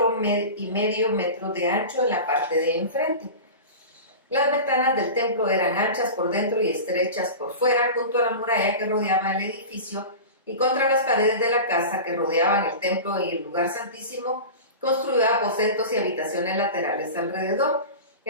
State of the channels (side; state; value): both; inverted; correlation -0.30